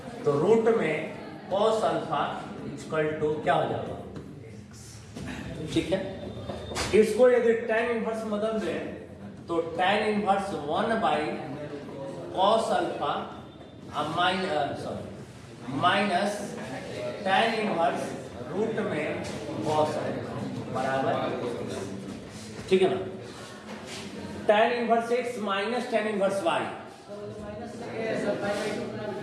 तो रूट में कॉस अल्फा इक्वल टू क्या हो जाएगा ठीक है इसको यदि tan इनवर्स बदल दें तो tan inverse 1/cos alpha minus tan inverse root में cos अल्फा बराबर ठीक है ना tan inverse x minus tan inverse y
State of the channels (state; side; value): identical; both; correlation 1.00